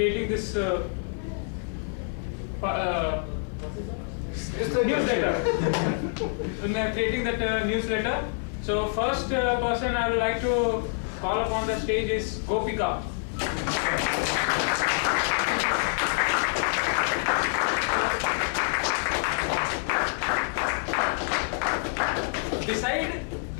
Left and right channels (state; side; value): silent; right; 60 dB below the other